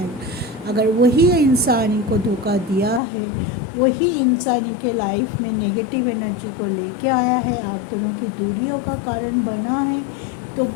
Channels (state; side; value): drops out; right; at 3.0 s